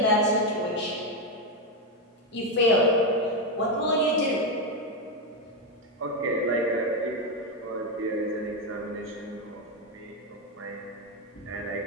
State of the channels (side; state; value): both; normal; correlation 0.07